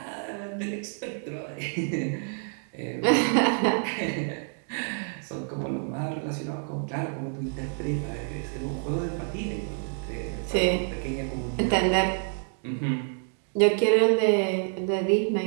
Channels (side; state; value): left; silent; 57 dB below the other